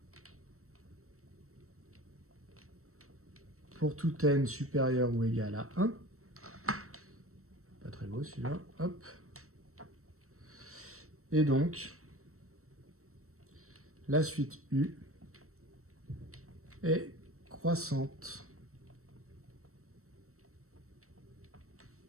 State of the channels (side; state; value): left; late; 0.64 ms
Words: pour tout N supérieur ou égal à 1. Pas très beau celui-là. Hop. Et donc, la suite U est croissante.